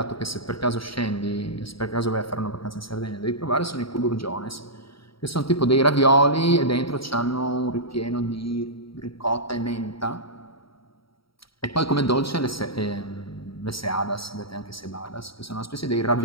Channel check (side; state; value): right; late; 0.75 ms